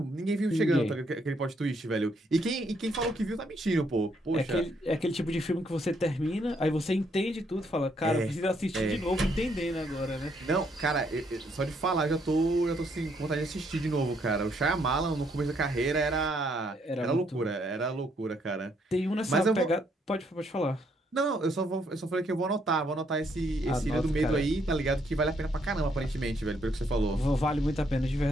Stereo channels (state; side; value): normal; both; correlation 0.72